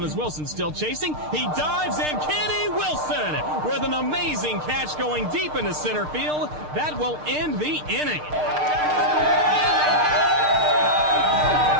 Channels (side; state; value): left; late; 6.6 ms